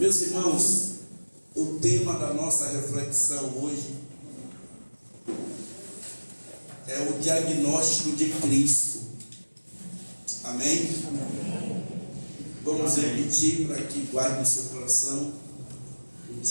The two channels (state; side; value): inverted; both; correlation -1.00